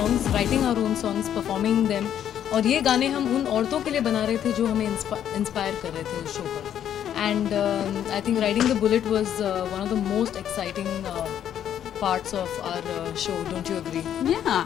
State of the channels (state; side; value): quieter; right; 10.0 dB